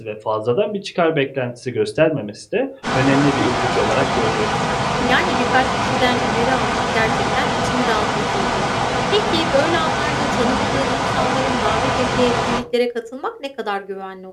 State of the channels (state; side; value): identical; both; correlation 1.00